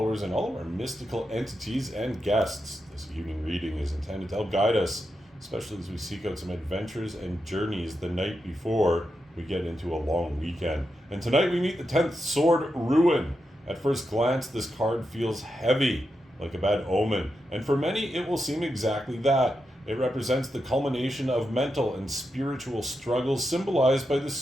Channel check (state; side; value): normal; both; correlation 0.86